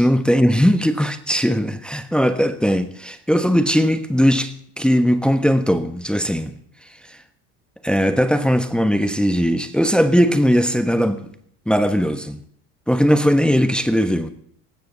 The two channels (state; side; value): normal; both; correlation 0.92